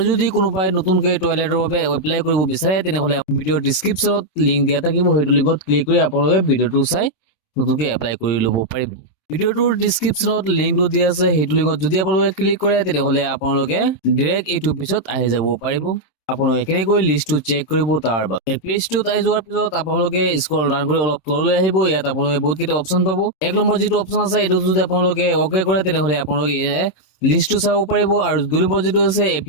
যদি কোনোবাই নতুনকৈ টয়লেটৰ বাবে এপ্লাই কৰিব বিচাৰে তেনেহ'লে ভিডিঅ'ৰ ডিছক্ৰিপশ্যনত লিংক দিয়া থাকিব। সেইটো লিংকত ক্লিক কৰি আপোনালোকে ভিডিঅ'টো চাই নতুনকৈ এপ্লাই কৰি ল'ব পাৰিব। ভিডিঅ'টোৰ ডিছক্ৰিপশ্যনত লিংকটো দিয়া আছে, সেইটো লিংকত যদি আপোনালোকে ক্লিক কৰে তেনেহ'লে আপোনালোকে ডাইৰেক্ট এইটো পেজত আহি যাব পাৰিব। আপোনালোকে কেনেকৈ লিষ্টটো চেক কৰিব তাৰ বাবে পেজটোত আহি যোৱাৰ পিছত আপোনালোকে স্ক্ৰল ডাউন কৰি অলপ তললৈ আহিব। ইয়াত আপোনালোকে বহুতকেইটা অপশ্যন পাব। এক নম্বৰ যিটো অপশ্যন আছে এইটো যদি আপোনালোকে অ'কে কৰে তেনেহ'লে আপোনালোকে লিষ্টটো চাব পাৰিব। আৰু 2 নম্বৰ যিটো আছে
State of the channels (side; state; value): right; late; 26 ms